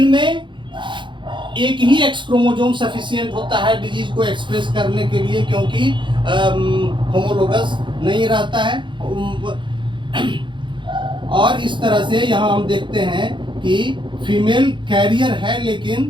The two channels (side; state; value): left; late; 0.23 ms